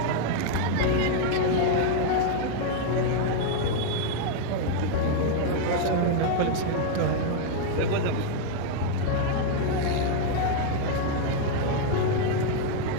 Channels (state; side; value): different; both; correlation 0.00